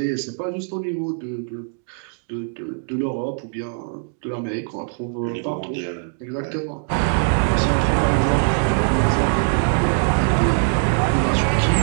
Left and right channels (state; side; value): silent; left; digital silence